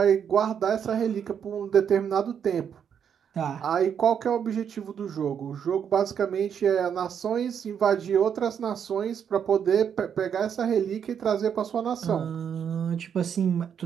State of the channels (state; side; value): quieter; left; 8.0 dB